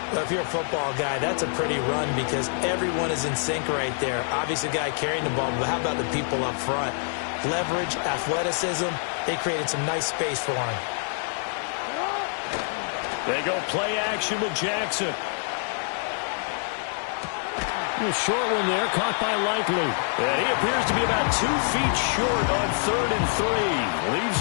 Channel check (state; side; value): silent; right; 61 dB below the other